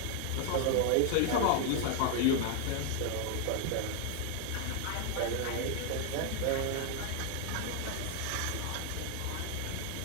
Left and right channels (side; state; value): both; different; correlation 0.00